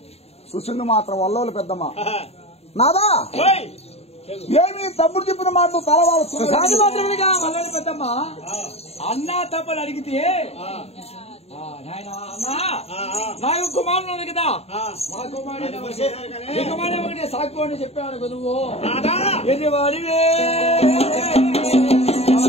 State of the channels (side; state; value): right; late; 0.30 ms